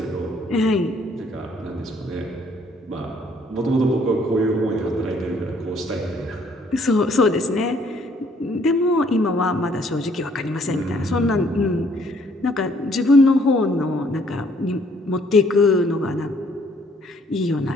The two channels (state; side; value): normal; both; correlation 0.64